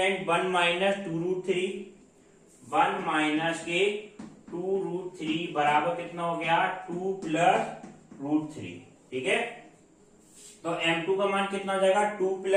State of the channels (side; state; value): both; identical; correlation 1.00